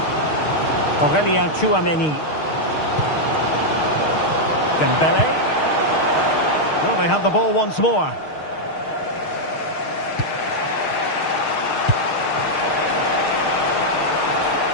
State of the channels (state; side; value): late; right; 6.5 ms